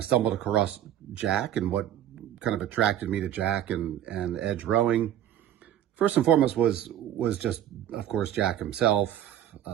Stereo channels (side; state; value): left; quieter; 11.2 dB